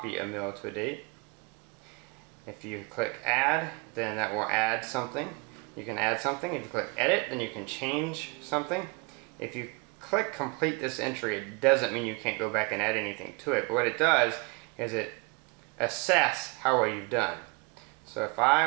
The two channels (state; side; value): quieter; left; 30.3 dB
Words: a meal to a date. If you click add, then that will add something. You can add something. If you click edit, then you can change something. If you click complete this entry, it doesn't mean you can't go back and add anything to it, but what it does is it assess how well you've done. So if